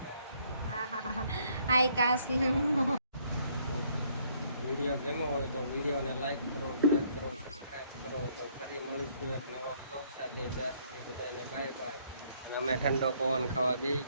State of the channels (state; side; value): inverted; both; correlation -0.66